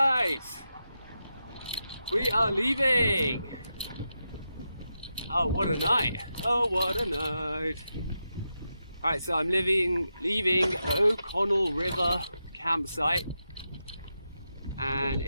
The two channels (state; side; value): inverted; both; correlation -0.88